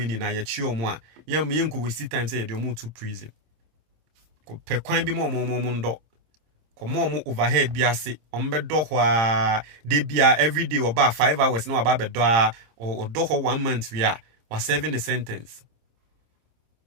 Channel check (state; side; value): late; left; 26 ms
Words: ni na ye chi omo a yam yenko we see time say de omo to prison. Pe kwan bi mo ndo komo overhead bi ase ombe do ho a de bia every day oba 5 hours na oba be do a o do ho 1 month we are was serving a sentence.